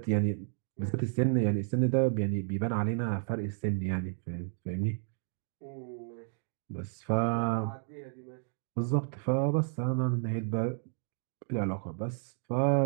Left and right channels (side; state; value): left; silent; 56 dB below the other